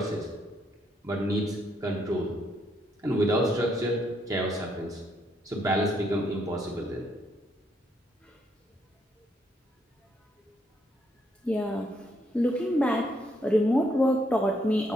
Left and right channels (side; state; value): both; normal; correlation 0.74